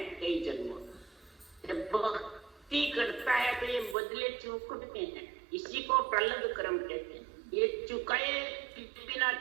कई जन्मों। जब भक्ति करता है तो ये बदले चुकते हैं, इसी को प्रलंब कर्म कहते हैं। ये चुकाए बिना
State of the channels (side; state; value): left; drops out; at 4.0 s